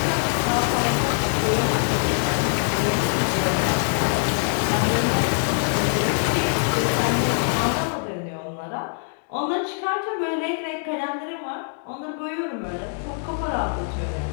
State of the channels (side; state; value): right; silent; 63 dB below the other